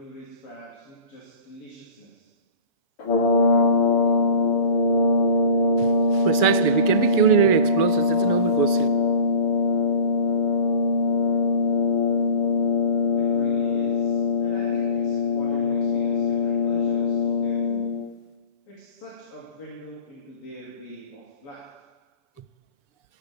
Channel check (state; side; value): late; right; 6.9 ms